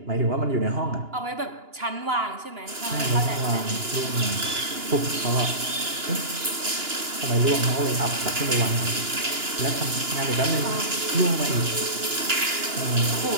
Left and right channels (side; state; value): left; late; 2.9 ms